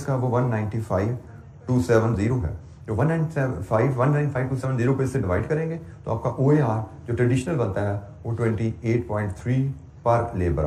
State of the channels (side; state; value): both; identical; correlation 1.00